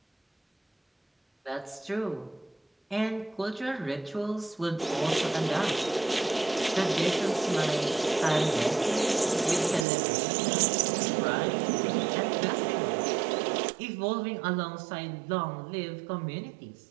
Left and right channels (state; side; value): drops out; left; at 9.9 s